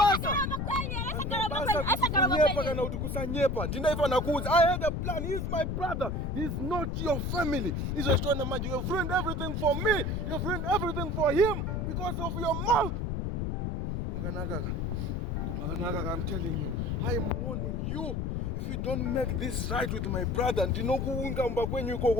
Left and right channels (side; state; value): left; noise; rumble, 1 dB below the sound